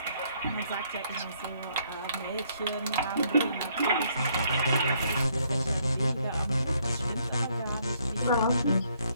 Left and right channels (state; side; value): inverted; both; correlation -0.68